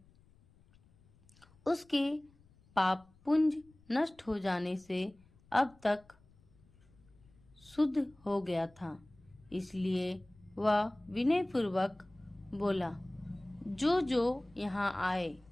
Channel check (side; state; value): left; noise; rumble, 29 dB below the sound